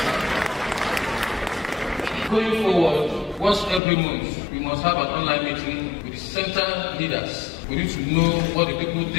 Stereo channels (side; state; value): right; drops out; at 3.8 s